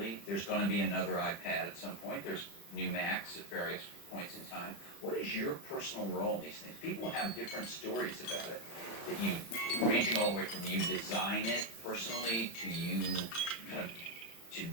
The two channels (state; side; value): late; right; 35 ms